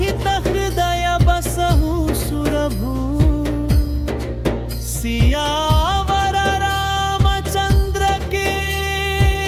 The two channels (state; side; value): identical; both; correlation 1.00